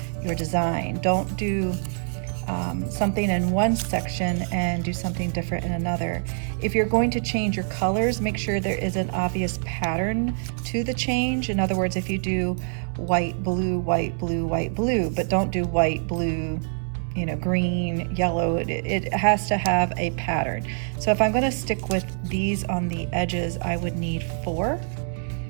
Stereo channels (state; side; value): silent; left; digital silence